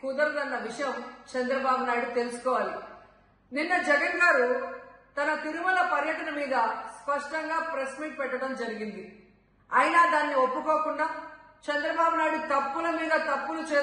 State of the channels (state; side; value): identical; both; correlation 1.00